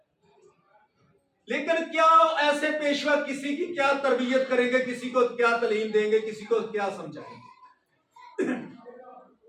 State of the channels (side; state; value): both; identical; correlation 1.00